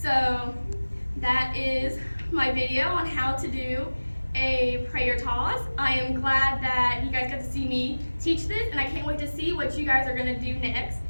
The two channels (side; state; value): both; inverted; correlation -1.00